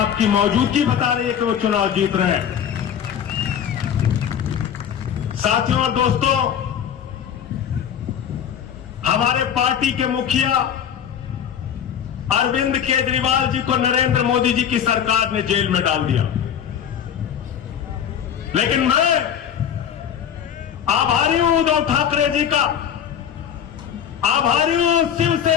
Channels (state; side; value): quieter; right; 8.8 dB